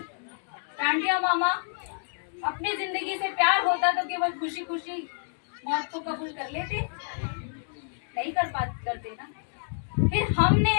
टांटिया मामा अपनी जिंदगी से प्यार होता तो केवल खुशी खुशी मौत को कबूल कर लेते, नहीं करते ना। फिर हमने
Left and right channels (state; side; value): silent; right; digital silence